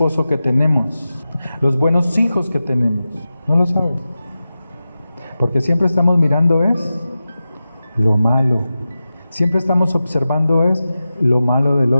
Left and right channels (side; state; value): both; inverted; correlation -0.94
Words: que tenemos, los buenos hijos que tenemos. No lo sabes. Porque siempre estamos mirando es lo malo. Siempre estamos observando es lo malo del